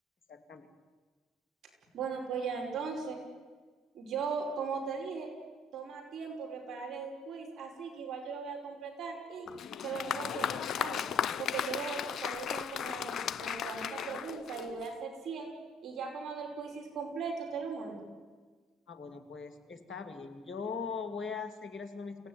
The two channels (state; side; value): normal; both; correlation 0.56